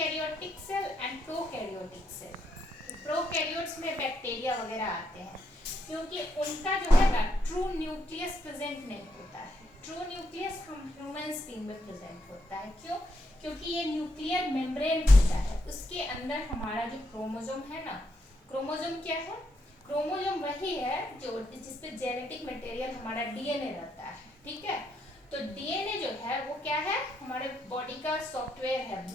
cell and prokaryotic cell. Prokaryotes में बैक्टीरिया वगैरह आते हैं, क्योंकि उनका जो है ना ट्रू न्यूक्लियस प्रेजेंट नहीं होता है। ट्रू न्यूक्लियस हम ह्यूमन स्पीन में प्रेजेंट होता है, क्यों, क्योंकि ये न्यूक्लियर मेम्ब्रेन होता है, उसके अंदर हमारा जो क्रोमोसोम है ना, क्रोमोसोम क्या है, क्रोमोसोम वही है जो जिसपे जेनेटिक मटेरियल हमारा डीएनए रहता है, ठीक है। तो डीएनए जो है वो क्या है, हमारे बॉडी का सॉफ्टवेयर है,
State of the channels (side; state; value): both; normal; correlation 0.78